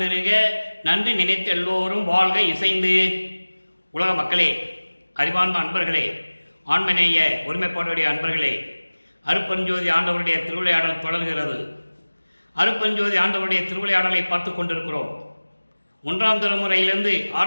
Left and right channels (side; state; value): both; inverted; correlation -1.00